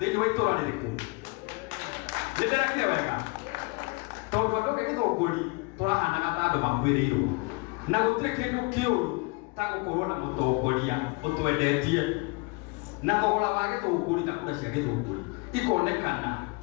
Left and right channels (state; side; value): quieter; right; 28.2 dB